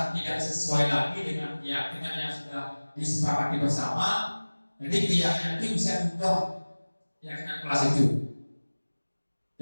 tidak sesuai lagi dengan keyakinan yang sudah disepakati bersama, jadi keyakinan itu bisa diubah, keyakinan kelas itu.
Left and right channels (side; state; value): both; inverted; correlation -1.00